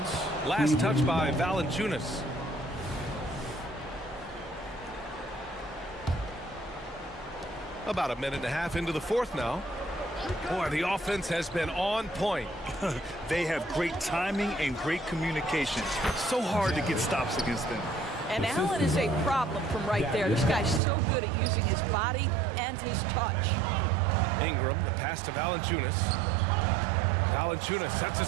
Last touch by Valanciunas. About a minute and a half into the 4th now. Boy, the offense has been on point. They have great timing and great communication. So hard to get stops against them. And Allen is a problem from right there. This guy's so good at using his body and his touch. Ingram, the pass to Valanciunas. Valanciunas sets a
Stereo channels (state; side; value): drops out; left; at 20.8 s